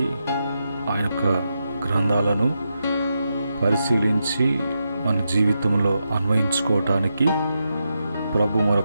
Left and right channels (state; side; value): inverted; both; correlation -0.86